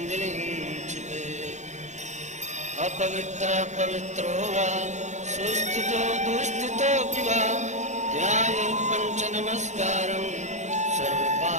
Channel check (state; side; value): late; left; 0.34 ms